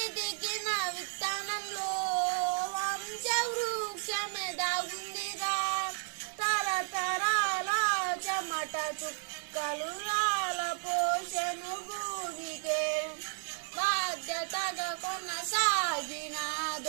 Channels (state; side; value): silent; left; 56 dB below the other